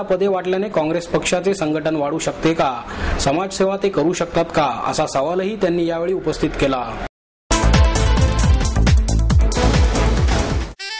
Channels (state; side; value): identical; both; correlation 1.00